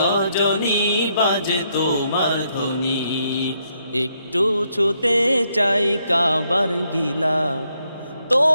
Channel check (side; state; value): both; inverted; correlation -0.76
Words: বাজে তোমার ধ্বনি। একটু ছুতে চাই কাবার গিলা,